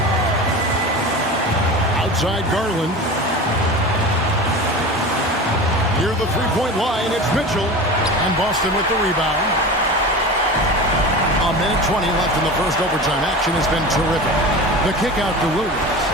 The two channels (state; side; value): normal; both; correlation 0.32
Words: Outside Garland. Near the three-point line, it's Mitchell. And Boston with the rebound. A minute 20 left in the first overtime. Action has been terrific. The kick out to Williams.